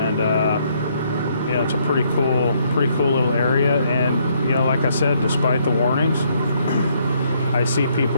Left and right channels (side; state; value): both; inverted; correlation -0.70